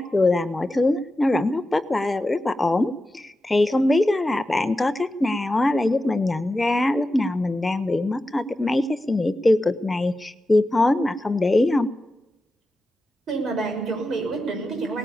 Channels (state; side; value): normal; both; correlation 0.92